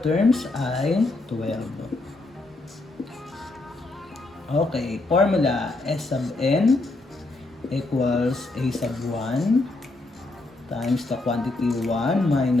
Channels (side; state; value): right; quieter; 3.0 dB